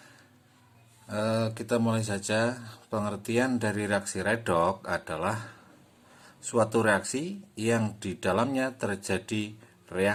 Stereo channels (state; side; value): identical; both; correlation 1.00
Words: Kita mulai saja. Pengertian dari reaksi redox adalah suatu reaksi yang di dalamnya terjadi